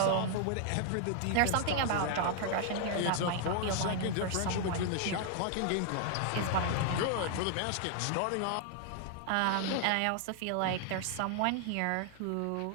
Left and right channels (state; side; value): different; both; correlation 0.00